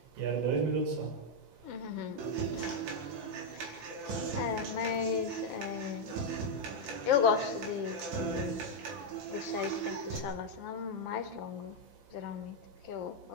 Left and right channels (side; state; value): left; late; 5.9 ms